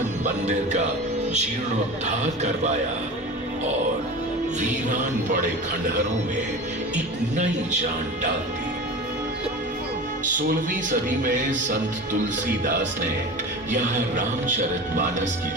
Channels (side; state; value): both; normal; correlation 0.32